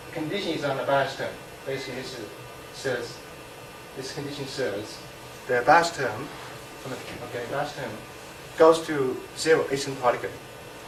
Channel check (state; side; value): identical; both; correlation 1.00